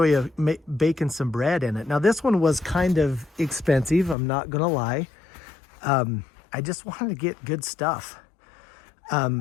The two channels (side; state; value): right; drops out; at 4.2 s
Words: you baking some bread in it. Now this one was kind of expensive, I'm not gonna lie. I just wanted to get good stuff.